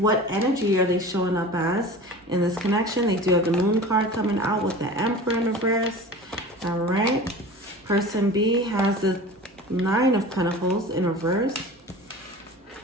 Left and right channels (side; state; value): both; normal; correlation 0.37